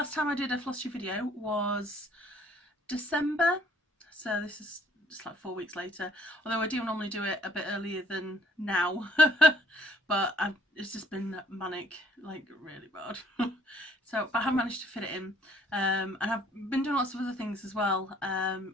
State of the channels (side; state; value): both; normal; correlation 0.61